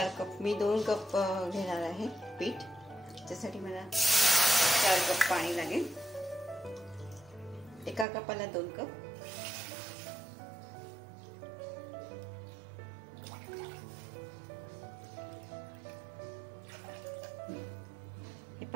कप, मी 2 कप घेणार आहे पीठ। त्यासाठी मला 4 कप पाणी लागेल। एका कपाला 2 कप। हे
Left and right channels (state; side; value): drops out; left; at 8.1 s